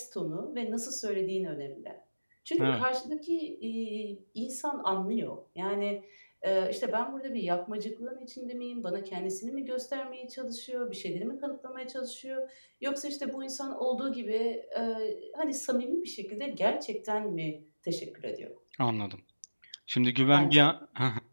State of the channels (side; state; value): both; inverted; correlation -1.00